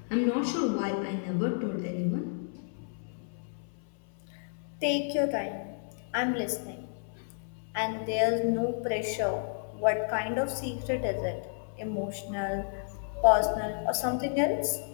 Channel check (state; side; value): silent; right; 57 dB below the other